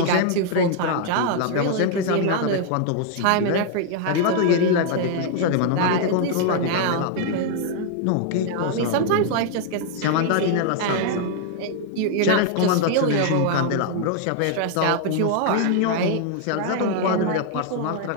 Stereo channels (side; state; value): both; different; correlation 0.00